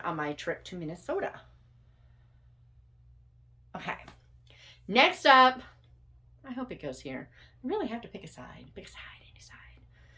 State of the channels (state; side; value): identical; both; correlation 1.00